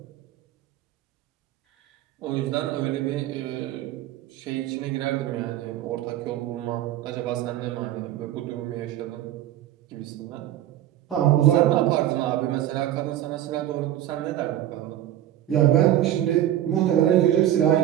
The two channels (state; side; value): quieter; left; 12.5 dB